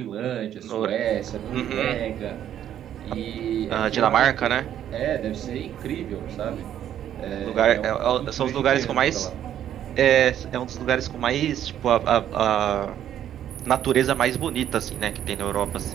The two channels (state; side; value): quieter; left; 10.6 dB